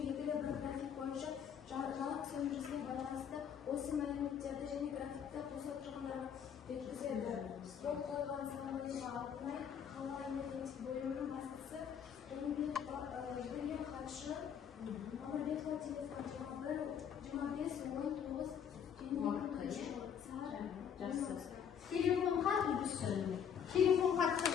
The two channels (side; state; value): right; quieter; 8.0 dB